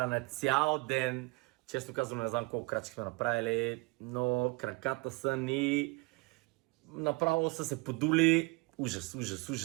цял ден, често казвам, не знам колко крачки сме направили, но краката са ни направо са се подули. Ужас.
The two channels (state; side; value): quieter; left; 26.9 dB